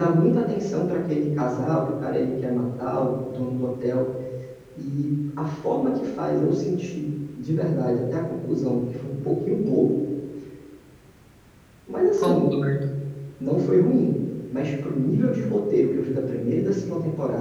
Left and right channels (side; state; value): both; identical; correlation 1.00